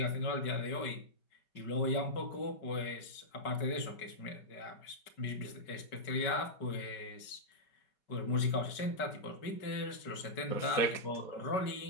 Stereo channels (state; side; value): late; right; 5.2 ms